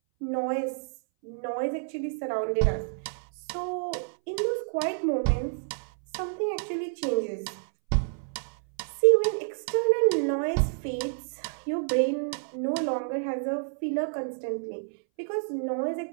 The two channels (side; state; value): left; silent; 59 dB below the other